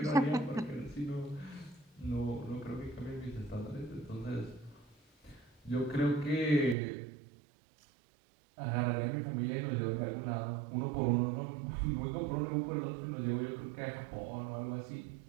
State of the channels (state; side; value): drops out; left; at 6.8 s